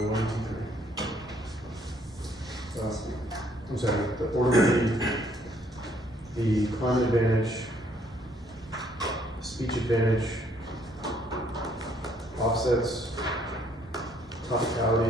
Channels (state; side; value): normal; both; correlation 0.66